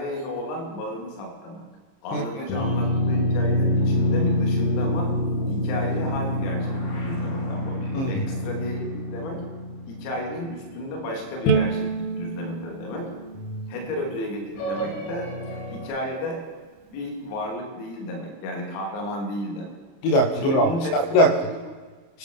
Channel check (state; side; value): late; right; 30 ms